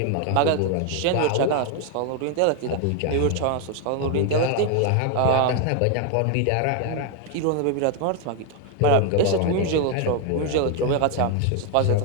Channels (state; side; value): different; both; correlation 0.01